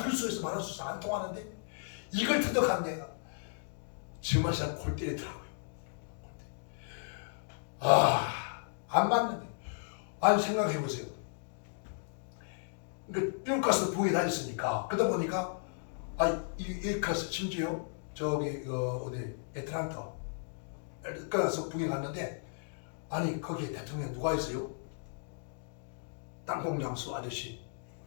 수 있어 말할 수 있어 안 통하는데 이걸 터득한 데가 정말 사람 골 때리더라고요. 안 맞는데. 아니 생각해보세요. 그러니까 미국 가서 부에 다녔으니까 그러다 보니까 이 가서 심지어 저기 어디 애틀랜타 가서 북에 갔는데 아니 거기에 대통령 누가 있어요? 땅콩장수 아저씨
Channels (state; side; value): silent; right; digital silence